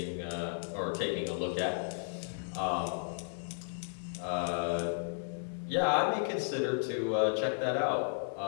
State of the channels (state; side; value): silent; right; 55 dB below the other